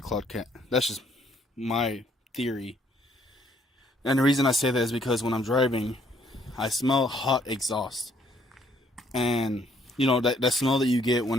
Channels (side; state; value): both; normal; correlation 0.66